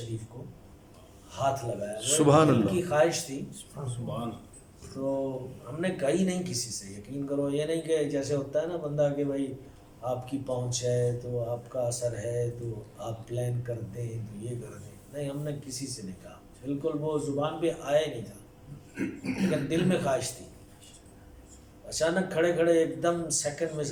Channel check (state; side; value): identical; both; correlation 1.00